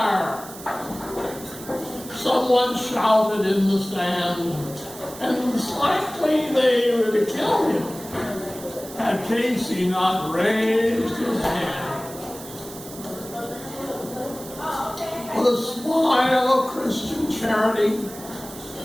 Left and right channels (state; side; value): noise; right; hiss, 15 dB below the sound